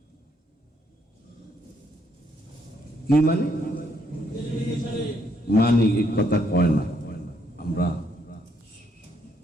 কি মানি? মানি এই কথা কয় না, আমরা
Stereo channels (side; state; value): both; normal; correlation 0.72